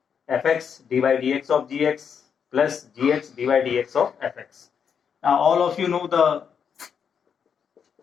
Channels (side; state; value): right; quieter; 7.2 dB